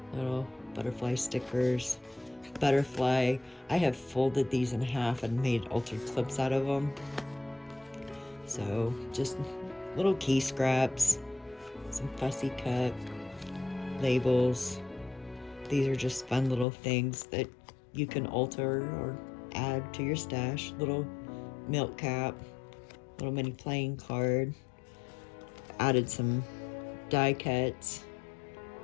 Little butterfly stickers. Butterfly, I have folded these in half and made altered clips out of them. So just little key scraps, some fussy cut labels. These are just fun little things that you can alter or add to your stash. Little milk cap, little mini playing card. Added some die cuts,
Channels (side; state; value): right; drops out; at 16.7 s